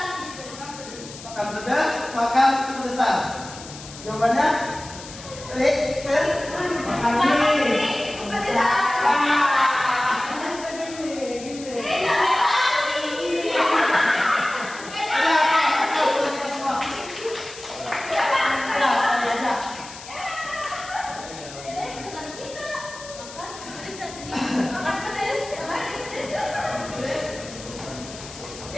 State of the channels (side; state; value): left; noise; hiss, 15 dB below the sound